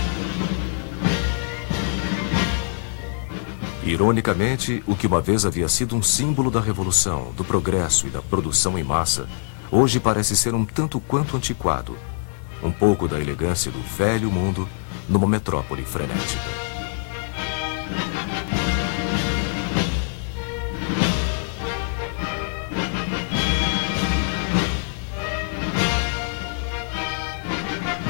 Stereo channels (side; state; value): right; silent; 59 dB below the other